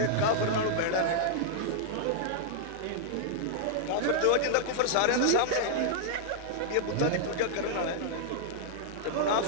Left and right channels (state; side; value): different; both; correlation -0.01